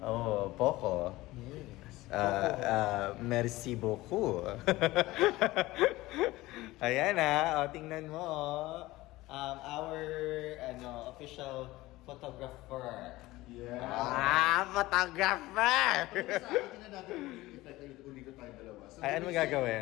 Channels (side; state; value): right; quieter; 18.6 dB